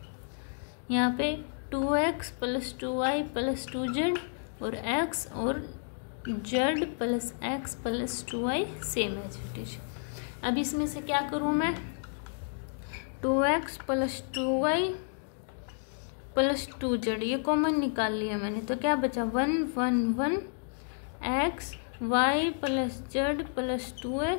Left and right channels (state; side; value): silent; right; digital silence